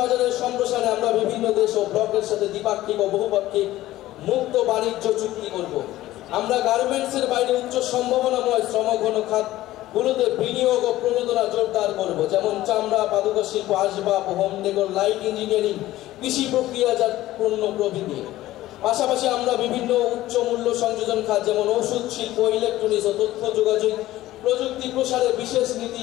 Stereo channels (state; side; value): quieter; right; 15.6 dB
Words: বাজারের সম্প্রসারণে আমরা বিভিন্ন দেশ ও ব্লকের সাথে দ্বিপাক্ষিক ও বহুপাক্ষিক মুক্ত বাণিজ্য চুক্তি করব। আমরা গার্মেন্টসের বাইরে উচ্চ সম্ভাবনাময় শ্রমঘন খাতগুলোতে বিনিয়োগ ও প্রণোদনা জোরদার করব, যেমন চামড়া, পাদুকা শিল্প, আসবাব, হোম ডেকোর, লাইট ইঞ্জিনিয়ারিং, কৃষি প্রক্রিয়াজাত পণ্য প্রভৃতি। পাশাপাশি আমরা বিভিন্ন উচ্চ মূল্য সংযোজন খাত যেমন ওষুধ শিল্প, ইলেকট্রনিক্স ও তথ্য যোগাযোগ প্রযুক্তি প্রসারে বিশেষ নীতি